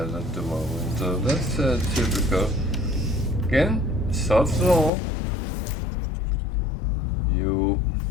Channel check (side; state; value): right; drops out; at 4.9 s